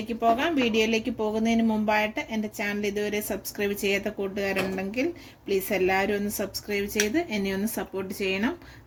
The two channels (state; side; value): identical; both; correlation 1.00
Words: പോകാം. വീഡിയോയിലേക്ക് പോകുന്നതിന് മുമ്പായിട്ട് എൻ്റെ ചാനൽ ഇതുവരെ സബ്സ്ക്രൈബ് ചെയ്യാത്ത കൂട്ടുകാരുണ്ടെങ്കിൽ പ്ലീസ് എല്ലാവരും ഒന്ന് സബ്സ്ക്രൈബ് ചെയ്ത് എന്നെ ഒന്ന് സപ്പോർട്ട് ചെയ്യണം.